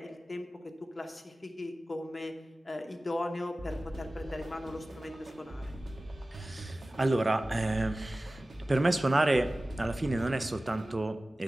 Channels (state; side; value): normal; both; correlation 0.97